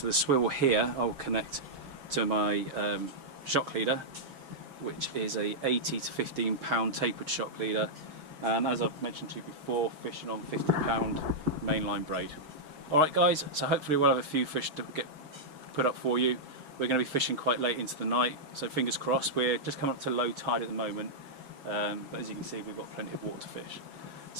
the swivel here I will connect to my shock leader, which is a 80 to 15 pound tapered shock leader, and as I've mentioned to you before, fishing on 50 pound mainline braid. Alright guys, so hopefully we'll have a few fish to get put up for you. We're going to be fishing quite late into the night, so fingers crossed. We're just coming up to low tide at the moment, but as you can see we've got plenty of water to fish.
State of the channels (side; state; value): left; late; 6.7 ms